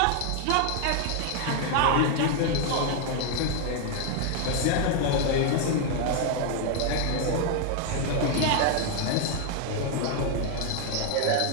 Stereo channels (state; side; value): different; both; correlation 0.00